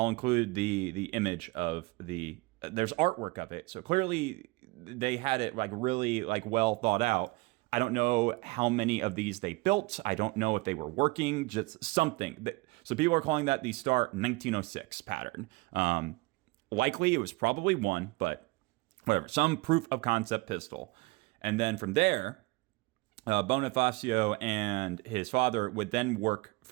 include the image of there's artwork of it, so clearly they had it really well thought out. I don't know how many of these they built. I don't know if they were working, just something. So people are calling that the Star 1906 pattern. Likely it was probably one, but whatever. Some proof of concept pistol. And then from there, Bonifacio and his father would then work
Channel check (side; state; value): left; quieter; 23.8 dB